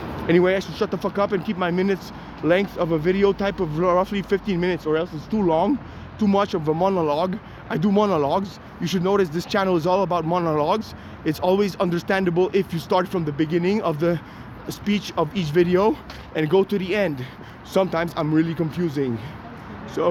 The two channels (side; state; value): both; identical; correlation 1.00